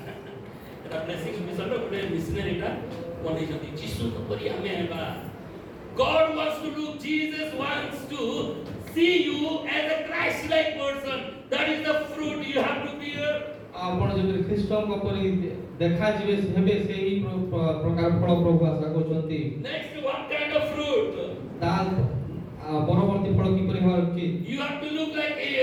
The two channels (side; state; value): both; identical; correlation 1.00